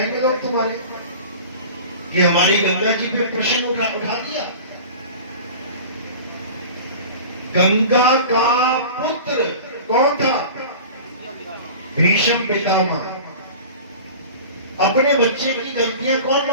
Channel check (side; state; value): both; inverted; correlation -0.37